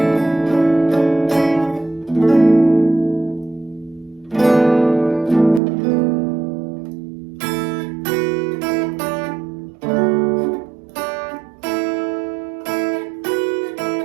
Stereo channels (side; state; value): left; drops out; at 5.6 s